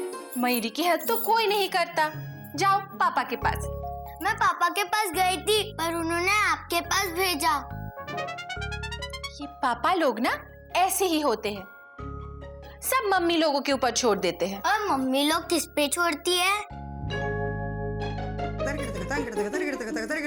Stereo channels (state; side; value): identical; both; correlation 1.00